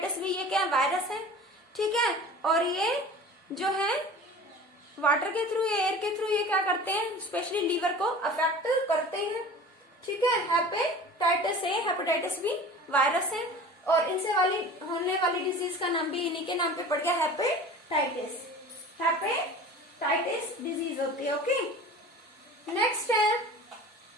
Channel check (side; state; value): both; normal; correlation 0.39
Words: बी, ये क्या वायरस है? ठीक है, और ये जो है वाटर के थ्रू या एयर के थ्रू ये क्या करते हैं? स्पेशली लीवर को अफेक्ट करते हैं। ठीक है, hepatitis A, hepatitis B virus है, और इनसे होने वाली डिजीज का नाम भी इन्हीं के नाम पे पड़ गया, हेपेटाइटिस। हेपेटाइटिस डिजीज होती है। ओके, नेक्स्ट है